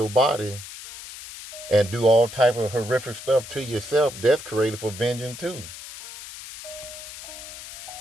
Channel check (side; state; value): left; noise; hiss, 13 dB below the sound